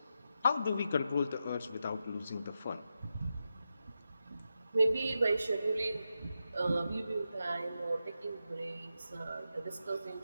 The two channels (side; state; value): both; inverted; correlation -0.88